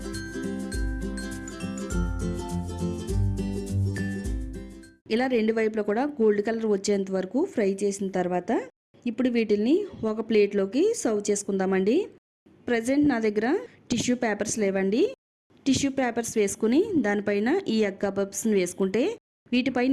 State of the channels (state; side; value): identical; both; correlation 1.00